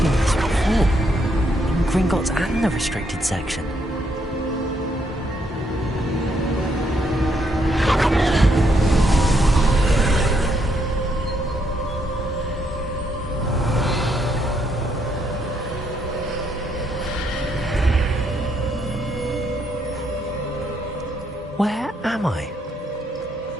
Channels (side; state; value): both; normal; correlation 0.75